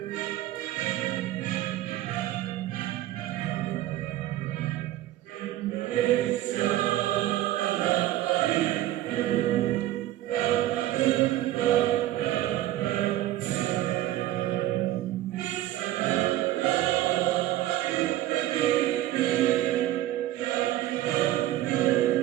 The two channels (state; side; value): quieter; left; 14.4 dB